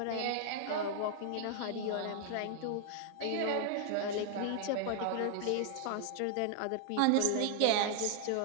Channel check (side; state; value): both; different; correlation 0.00